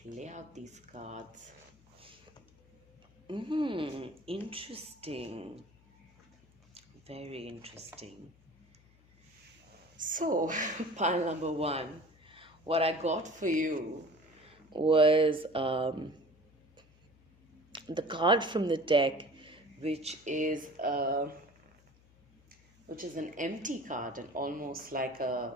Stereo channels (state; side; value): noise; left; hum, 29 dB below the sound